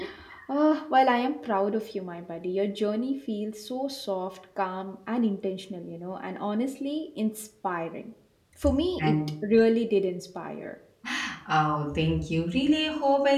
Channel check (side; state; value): both; identical; correlation 1.00